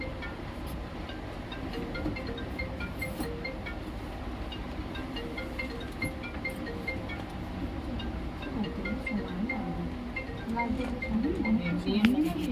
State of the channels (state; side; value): identical; both; correlation 1.00